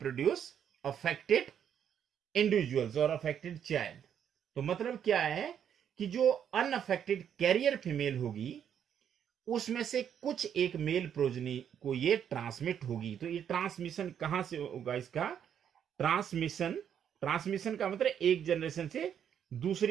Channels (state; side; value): quieter; left; 8.8 dB